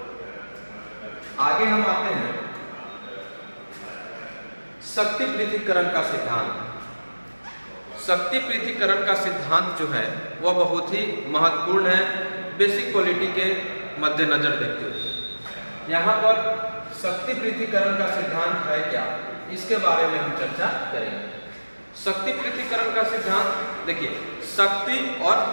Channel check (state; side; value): inverted; both; correlation -1.00